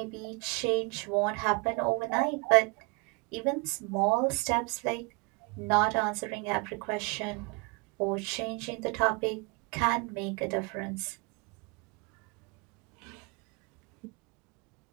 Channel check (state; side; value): quieter; left; 29.8 dB